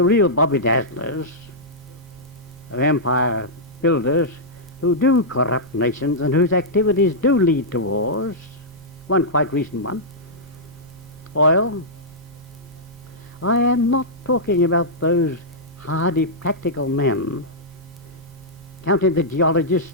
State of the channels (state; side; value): normal; both; correlation -0.11